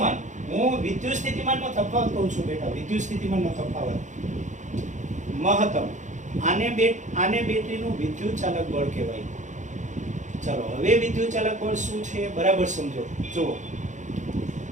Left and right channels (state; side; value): late; left; 0.35 ms